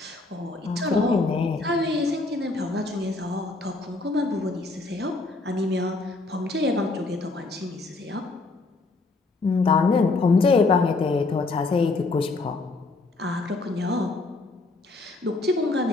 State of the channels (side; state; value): right; quieter; 3.5 dB